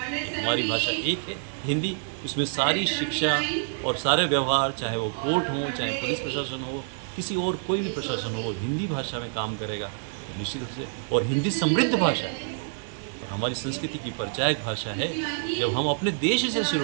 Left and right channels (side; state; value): left; silent; 60 dB below the other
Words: हमारी भाषा एक है हिंदी, उसमें सारी शिक्षा और सारे व्यवहार, चाहे वो कोर्ट हो, चाहे पुलिस प्रशासन हो, किसी और कोई भी प्रशासन हो, हिंदी भाषा में काम करेगा निश्चित रूप से। और हिंदी समृद्ध भाषा है और हमारी संस्कृति की परिचायक भाषा है। जब हम अपने देश से शुरू